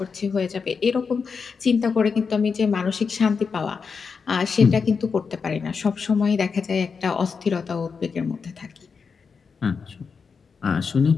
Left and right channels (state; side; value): quieter; right; 5.5 dB